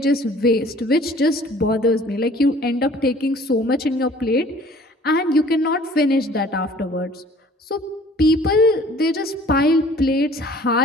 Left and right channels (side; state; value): both; normal; correlation 0.52